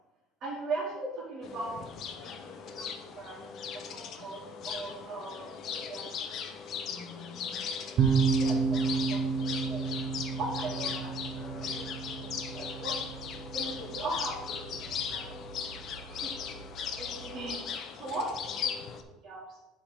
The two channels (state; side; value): normal; both; correlation 0.55